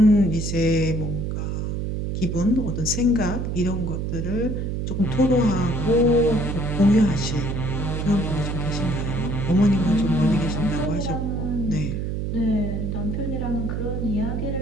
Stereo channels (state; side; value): noise; right; hum, 2 dB below the sound